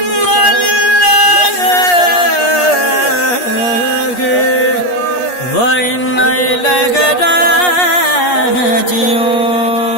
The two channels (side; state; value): right; late; 8.4 ms